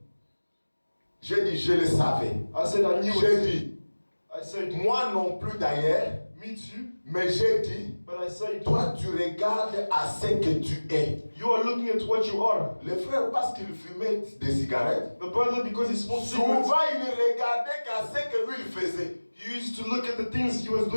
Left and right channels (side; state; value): both; inverted; correlation -1.00